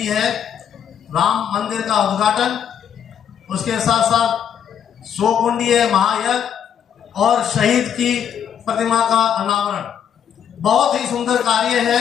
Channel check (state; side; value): quieter; right; 8.6 dB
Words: है, राम मंदिर का उद्घाटन, उसके साथ साथ 100 कुंडीय महायज्ञ और शहीद की प्रतिमा का अनावरण। बहुत ही सुंदर कार्य है